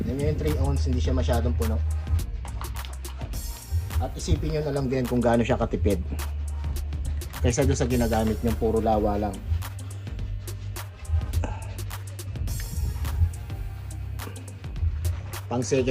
Yung 3 ounce hindi siya masyadong puno. At isipin nyo na lang din kung gaano siya katipid kaysa doon sa ginagamit nyo puro lawa lang. Pang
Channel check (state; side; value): identical; both; correlation 1.00